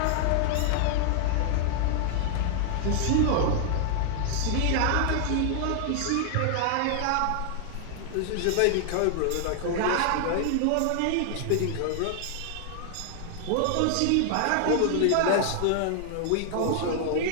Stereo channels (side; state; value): both; different; correlation -0.01